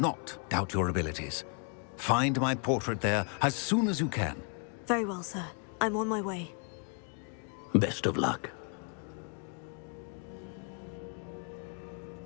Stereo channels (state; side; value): quieter; right; 39.8 dB